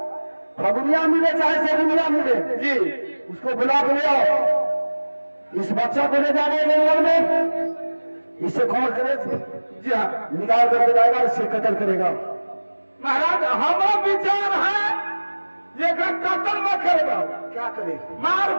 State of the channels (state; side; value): inverted; both; correlation -1.00